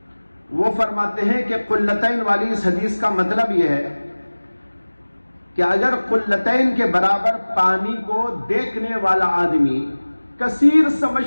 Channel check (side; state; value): both; inverted; correlation -1.00